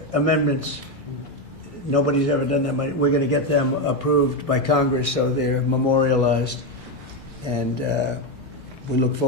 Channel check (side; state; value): both; normal; correlation 0.09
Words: amendments. Nobody's ever done that. We're going to get them approved by Congress so they're memorialized. And we look